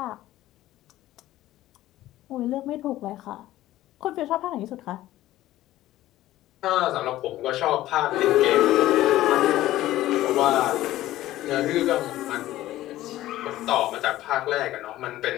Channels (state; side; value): quieter; right; 15.1 dB